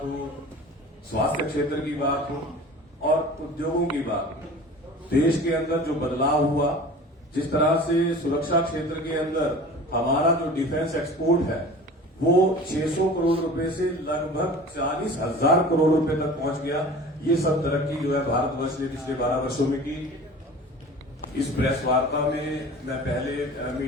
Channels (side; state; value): both; normal; correlation 0.40